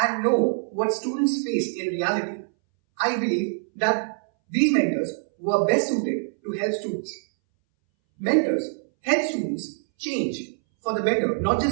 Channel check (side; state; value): left; silent; 61 dB below the other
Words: and know what students face in reality. I believe that these mentors were best suited to help students. Mentors help students change for the better, not